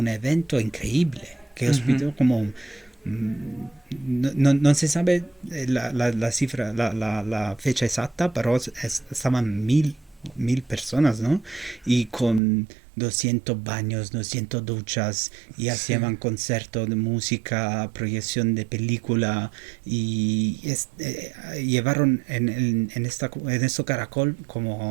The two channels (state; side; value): drops out; left; at 12.4 s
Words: evento increíble, que ujú, hospitó como no se sabe la cifra, la fecha exacta, pero estaban mil personas, ¿no? Y con 200 baños, 200 duchas, y sí. hacían conciertos de música, proyección de película, y llevaron en este caracol